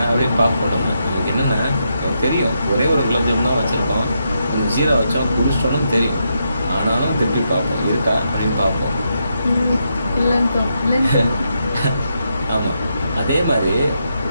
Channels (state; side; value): inverted; both; correlation -0.82